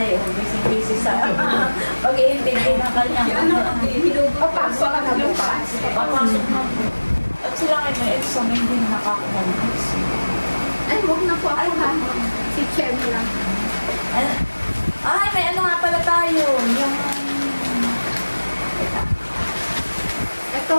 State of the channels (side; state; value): both; inverted; correlation -1.00